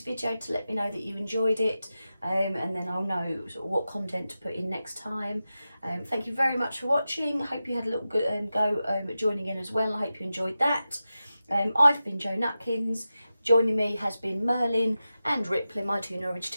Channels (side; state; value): both; inverted; correlation -0.92